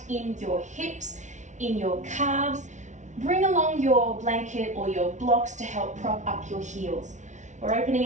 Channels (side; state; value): left; late; 0.35 ms